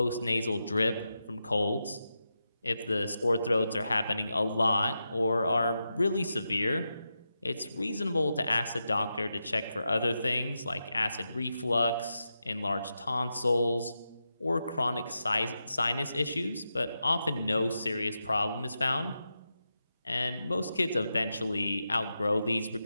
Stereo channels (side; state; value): both; inverted; correlation -0.88